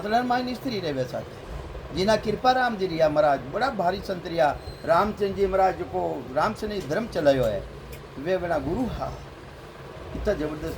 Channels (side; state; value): both; identical; correlation 1.00